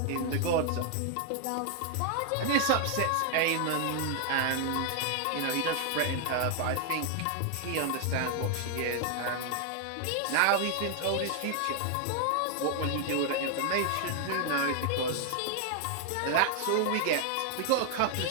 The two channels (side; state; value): both; different; correlation 0.00